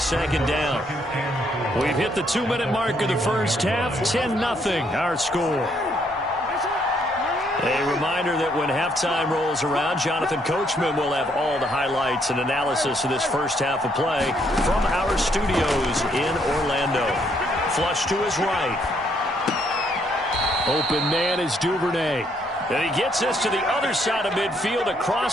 down. We've hit the 2-minute mark of the first half. 10-0 our score. A reminder that when halftime rolls around, Jonathan Coachman will have all the highlights and analysis of this first half of play from our studios in Orlando. Flush to his right. Open man is Duvernay. And he gets this to the other side of midfield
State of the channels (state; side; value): normal; both; correlation 0.71